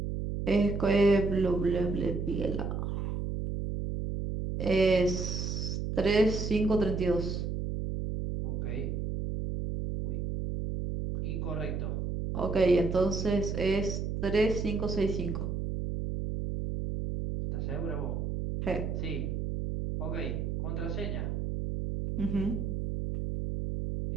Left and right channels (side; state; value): right; noise; hum, 2 dB below the sound